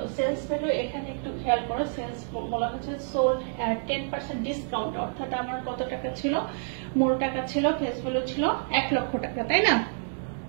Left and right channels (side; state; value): left; silent; digital silence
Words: সেলস ভ্যালু এখানে একটু খেয়াল করো, সেলস বলা হচ্ছে সোল্ড 10% ডিসকাউন্ট, অর্থাৎ আমার কত টাকা ছিল, মূল টাকা ছিল, ফেস ভ্যালু ছিল 1 লক্ষ টাকা, তাই না?